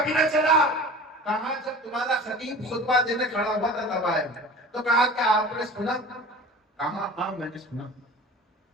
بھی نہ چلا. کہا جب تمہارا خطیب خطبہ دینے کھڑا ہوا تھا تب آئے. تو کہا کیا آپ نے سنا؟ کہا ہاں میں نے سنا.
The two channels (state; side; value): normal; both; correlation 0.38